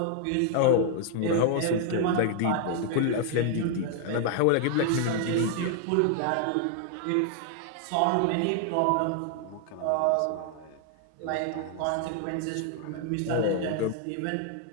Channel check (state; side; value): different; both; correlation 0.00